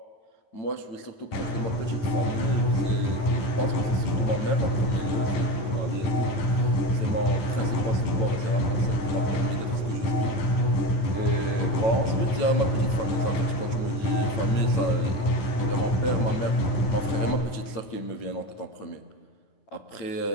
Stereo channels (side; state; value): right; late; 9.0 ms